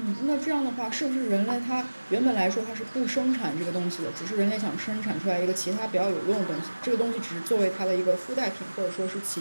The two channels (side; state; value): both; inverted; correlation -1.00